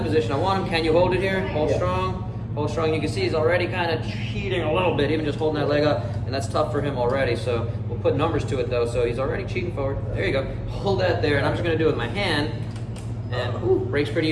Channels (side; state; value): both; identical; correlation 1.00